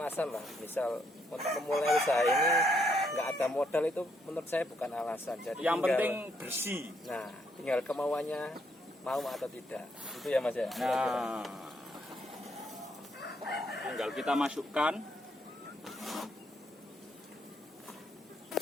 lah. Misal untuk memulai usaha ini nggak ada modal, itu menurut saya bukan alasan. Jadi Yang tinggal- penting bersih. Nah, tinggal kemauannya mau atau tidak. Itu ya Mas ya. Nah, tinggal kita masukkan.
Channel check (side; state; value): both; normal; correlation 0.73